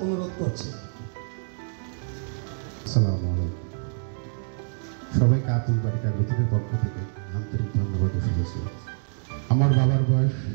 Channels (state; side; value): silent; left; digital silence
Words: অনুরোধ করছি। আসসালামু আলাইকুম। সবাইকে আব্দুল বারী কাগজের পক্ষ থেকে আন্তরিক ধন্যবাদ ও শুভেচ্ছা। আমার বাবার বয়স